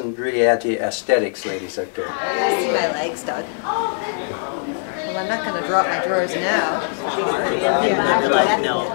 really add to aesthetics, ladies out there. You gotta see my legs, Doug. Well, I'm not going to drop my drawers now.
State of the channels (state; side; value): silent; right; digital silence